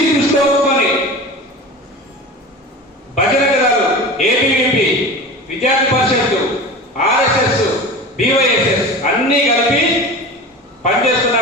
దృష్టిలో ఉంచుకొని భజన దళాలు, ఏబీవీపీ, విద్యార్థి పరిషత్తు, ఆర్ఎస్ఎస్, బీవైఎస్ఎస్ అన్ని కలిపి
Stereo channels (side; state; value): both; normal; correlation 0.32